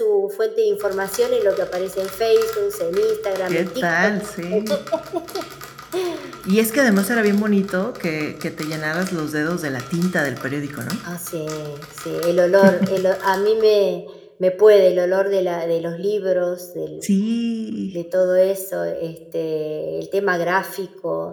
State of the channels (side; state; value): both; identical; correlation 1.00